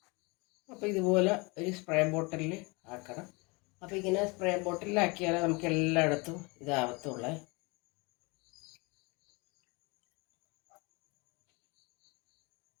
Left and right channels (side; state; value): right; quieter; 27.6 dB